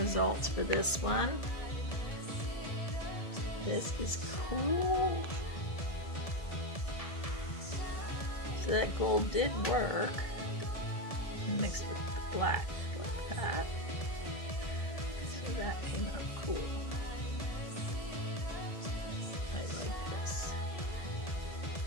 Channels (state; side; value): late; right; 1.7 ms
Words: for this one. This is cool. So that gold did work. And mixed with the black like that. So that came out cool. I like this.